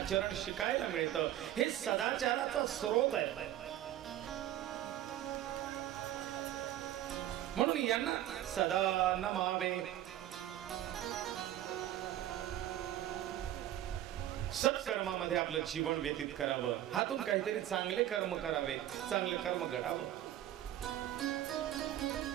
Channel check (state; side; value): quieter; left; 12.7 dB